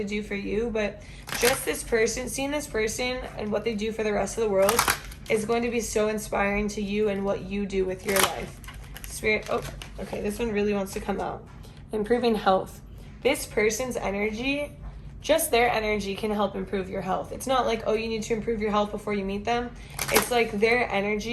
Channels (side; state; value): both; identical; correlation 1.00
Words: do for you, but just this person, seeing this person and what they do for the rest of the world is going to be so inspiring to you and what you do with your life. Spirit, oh, okay, this one really wants to come out. Improving health. This person's energy, just their energy can help improve your health. It's not like, oh, you need to improve your health before you meet them. It's like their